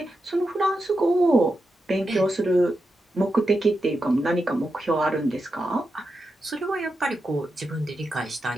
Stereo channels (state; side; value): normal; both; correlation 0.88